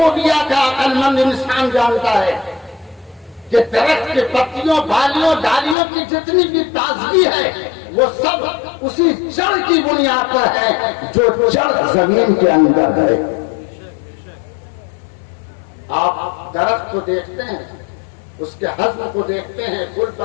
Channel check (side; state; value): right; drops out; at 5.8 s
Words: کا عقل مند انسان جانتا ہے کہ درخت کے پتیوں بالیوں ڈالیوں کی جتنی بھی تازگی ہے وہ سب اسی جڑ کی بنیاد پر ہے جو جڑ زمین کے اندر ہے. آپ درخت کو دیکھتے ہیں, اس کے حجم کو دیکھتے ہیں, پھول